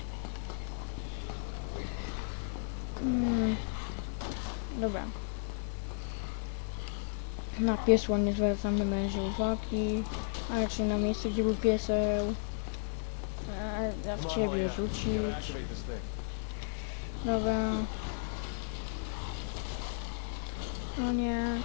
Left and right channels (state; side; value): silent; right; digital silence